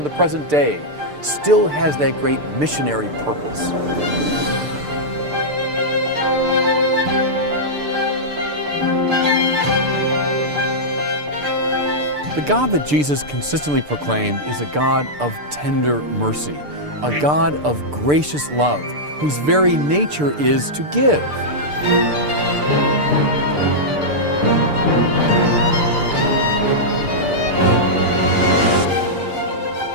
the present day still has that great missionary purpose. The God that Jesus consistently proclaimed is a God of tender mercy, a God of gracious love, whose very nature is to give.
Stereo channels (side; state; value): left; late; 6.8 ms